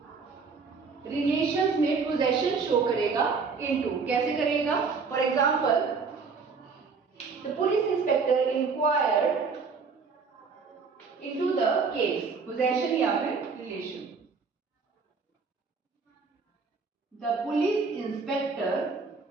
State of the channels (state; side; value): quieter; left; 5.0 dB